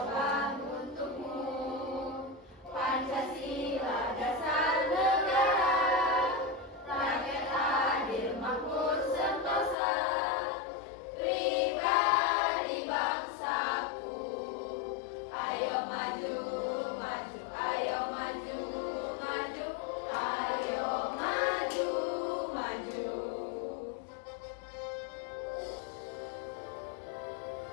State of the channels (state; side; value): drops out; right; at 9.8 s